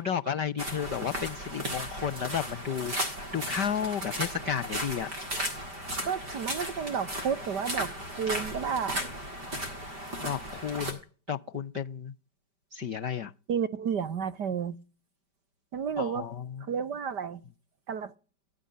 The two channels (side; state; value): left; late; 5.1 ms